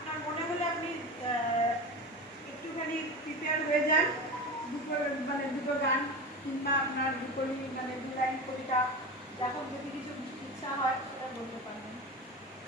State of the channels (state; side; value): normal; both; correlation 0.27